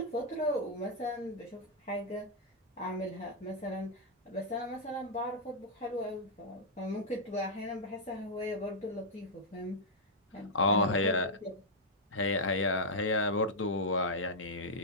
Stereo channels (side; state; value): both; normal; correlation -0.07